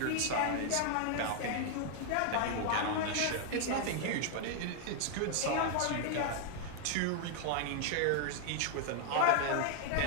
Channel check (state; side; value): different; both; correlation 0.00